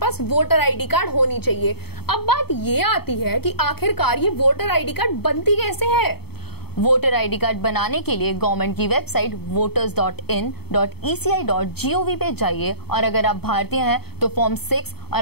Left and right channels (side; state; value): right; late; 0.96 ms